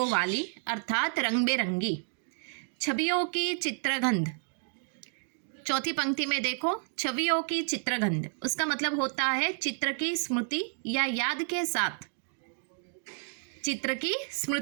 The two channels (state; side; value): silent; left; 57 dB below the other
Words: वाली, अर्थात रंग बेरंगी। छवियों की चित्रगंध, चौथी पंक्ति में देखो, छवियों की चित्रगंध, उसका मतलब होता है चित्र की स्मृति या याद के साथ। चित्र की